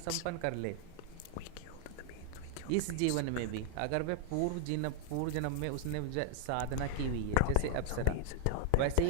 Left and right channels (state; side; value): different; both; correlation 0.00